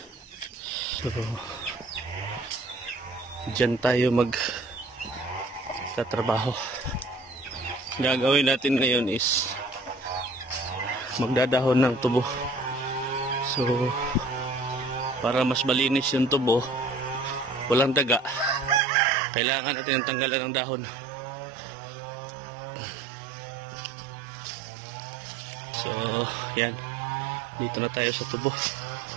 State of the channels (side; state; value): left; drops out; at 18.8 s